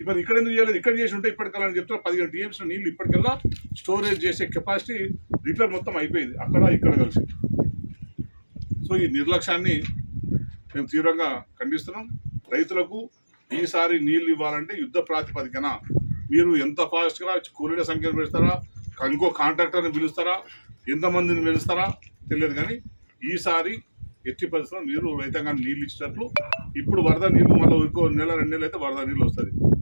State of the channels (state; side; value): inverted; both; correlation -1.00